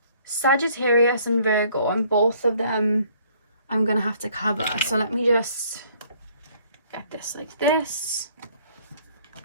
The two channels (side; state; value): both; inverted; correlation -0.61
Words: Sagittarius and Virgo, and both of them I'm going to have to cover. So let me just get this like this.